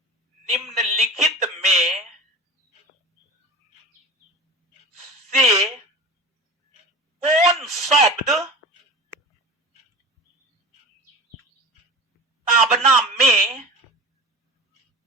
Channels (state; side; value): normal; both; correlation 0.32